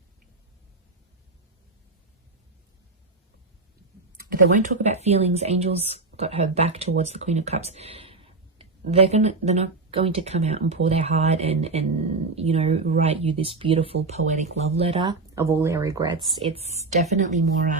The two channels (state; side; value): quieter; left; 3.6 dB